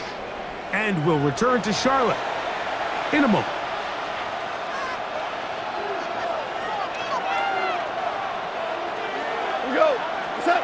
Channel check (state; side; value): identical; both; correlation 1.00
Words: And will return to Charlotte in a moment. Here we go. What's up?